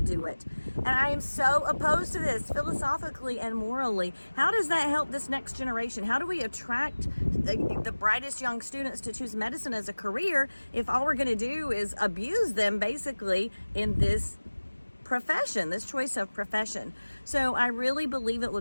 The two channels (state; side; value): inverted; both; correlation -1.00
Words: do it. And I am so opposed to this philosophically and morally. How does that help this next generation? How do we attract the brightest young students to choose medicine as a career if all we're going to do is abuse them basically in this profession, this choice of profession? So I really believe it